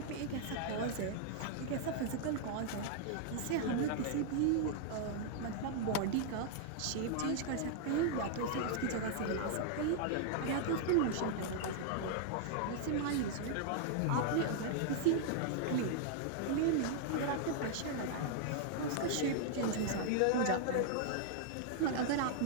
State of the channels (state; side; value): different; both; correlation -0.01